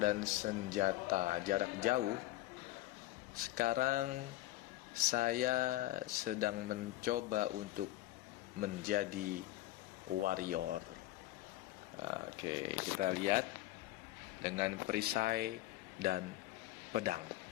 senjata jarak jauh, sekarang saya sedang mencoba untuk menjadi warrior. Oke, kita lihat dengan perisai dan pedang.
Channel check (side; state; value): right; quieter; 16.7 dB